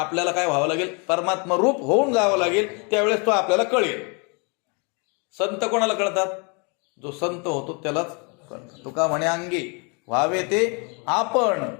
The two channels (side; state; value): right; quieter; 33.6 dB